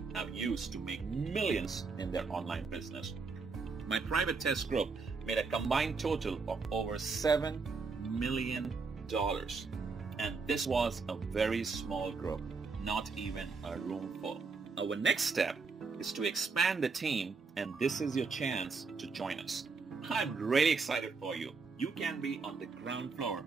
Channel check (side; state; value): left; quieter; 4.6 dB